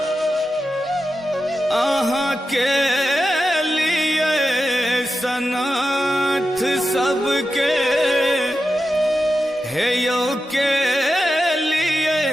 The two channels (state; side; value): normal; both; correlation 0.91